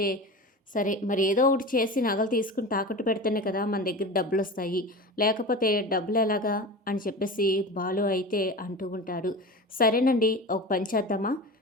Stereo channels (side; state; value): both; normal; correlation 0.30